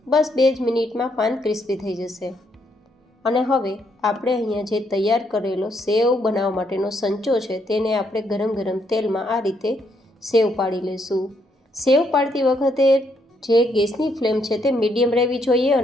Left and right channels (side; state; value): both; normal; correlation 0.74